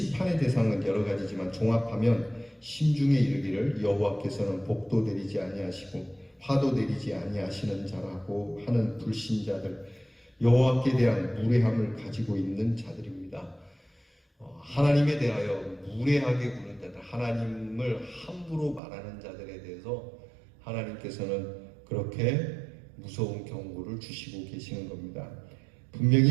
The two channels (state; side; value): drops out; left; at 18.8 s